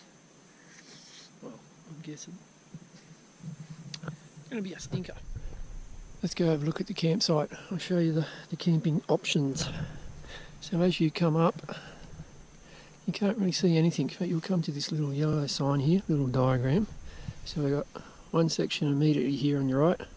well, I'm guessing it's going to be a stinker. Let's go have a look at the campsite. I'll show you the camping options. So as you come up, you can't really see anything, but you'll come to this little yellow sign here, little diagram. So we've got one section immediately here on your right,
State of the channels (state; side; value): identical; both; correlation 1.00